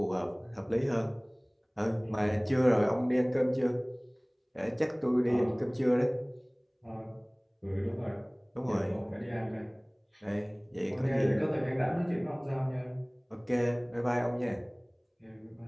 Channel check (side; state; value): both; identical; correlation 1.00